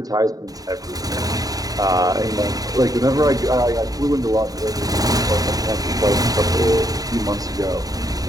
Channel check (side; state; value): left; late; 0.18 ms